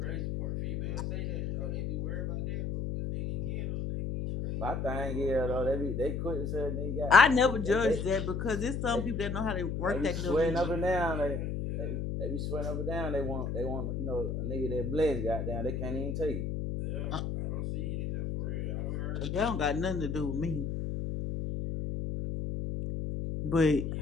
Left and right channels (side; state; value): left; noise; hum, 2 dB below the sound